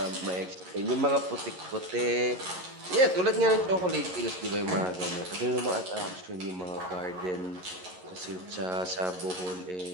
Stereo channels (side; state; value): left; late; 11 ms